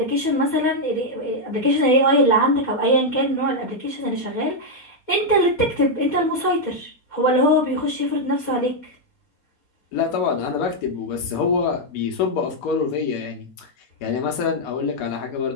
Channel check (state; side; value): late; right; 4.2 ms